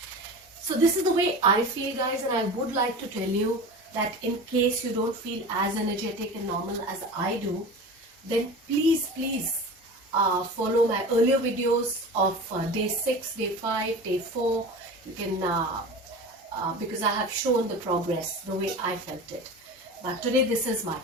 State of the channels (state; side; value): normal; both; correlation 0.33